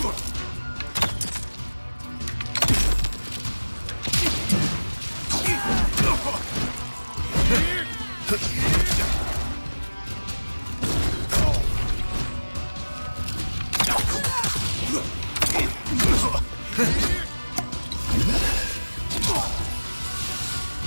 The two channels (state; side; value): inverted; both; correlation -1.00